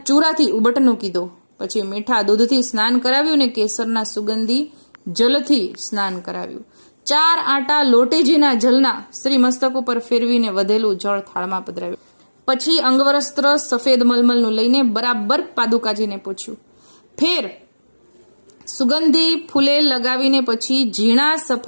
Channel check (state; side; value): inverted; both; correlation -1.00